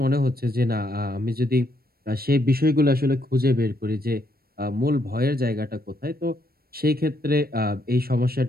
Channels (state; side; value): late; left; 0.44 ms